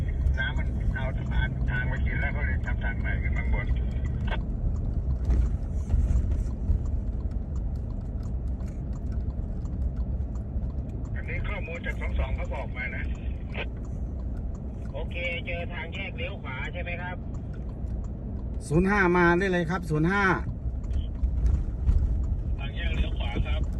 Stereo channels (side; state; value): both; identical; correlation 1.00